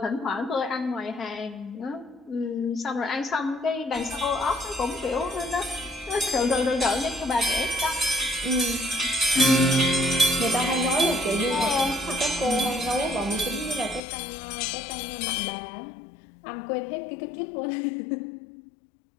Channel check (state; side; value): drops out; right; at 14.0 s